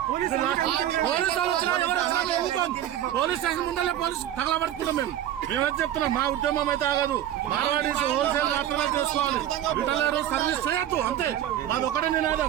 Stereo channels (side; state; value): left; quieter; 11.7 dB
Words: పోలీస్ స్టేషన్ ముందరే పోలీసు తగలబెడుతున్నాం. మేమేం చెప్తున్నాం, మా ఉద్యమం అయితే ఆగదు. మార్వాడీస్ హోల్సేల్ మాత్రమే చేసుకోవాలి. రిటైలర్ సర్వీస్ చేయొద్దు. అంతే, మాది ఒకటే